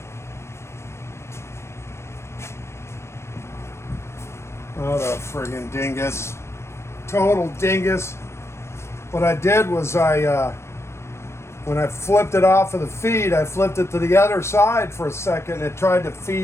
What a friggin' dingus. Total dingus. What I did was when I flipped it off of the feed, I flipped it to the other side for a second and it tried to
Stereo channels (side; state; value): right; late; 0.13 ms